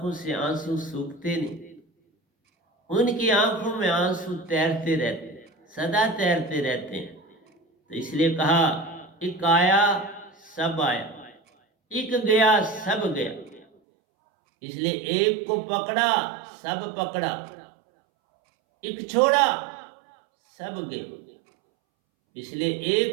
से आंसू सूखते नहीं, उनकी आंखों में आंसू तैरते रहते हैं, सदा तैरते रहते हैं। तो इसलिए कहा, एक आया सब आया, एक गया सब गया। इसलिए एक को पकड़ा सब पकड़ा, एक छोड़ा सब गए। इसलिए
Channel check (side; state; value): left; drops out; at 13.7 s